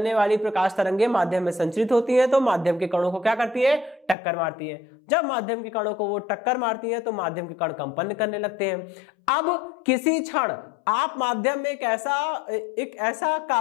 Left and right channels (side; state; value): right; drops out; at 4.2 s